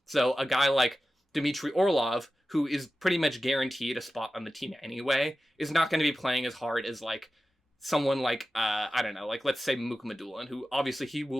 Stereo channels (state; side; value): normal; both; correlation 0.94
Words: So a guy like Dmitry Orlov, who is pretty much guaranteed a spot on the team anyway, is not going to be playing as hard as, like, someone like, I don't know, like, let's say Mukhamadullin, who obviously he